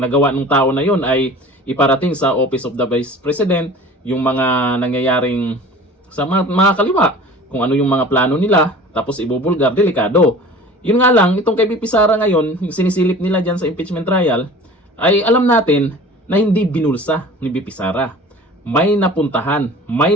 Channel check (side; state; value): both; normal; correlation 0.42